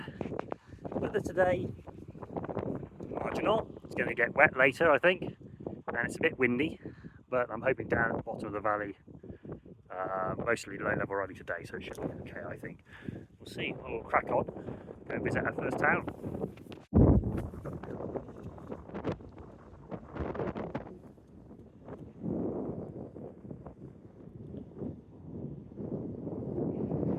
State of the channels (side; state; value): both; identical; correlation 1.00